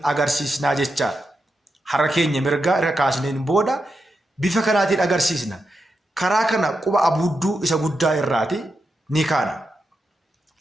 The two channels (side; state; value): both; normal; correlation 0.86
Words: agarsiisnaa jechaadha. Harka keenya mirgaa irra kaasneen booda bifa kanaatiin agarsiisna. Karaa kana quba abuudduu isa guddaa irraati ni kaana.